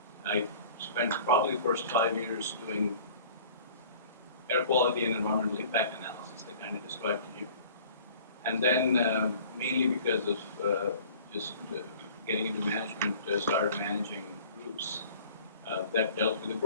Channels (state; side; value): inverted; both; correlation -0.48